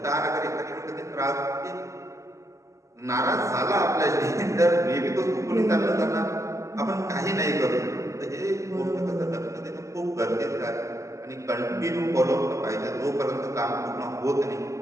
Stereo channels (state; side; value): late; left; 0.15 ms